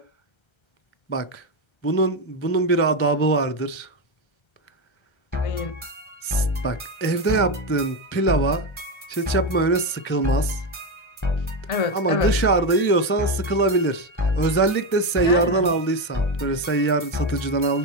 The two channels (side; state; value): right; late; 1.3 ms